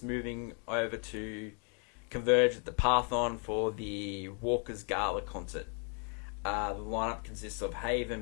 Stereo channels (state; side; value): quieter; right; 39.8 dB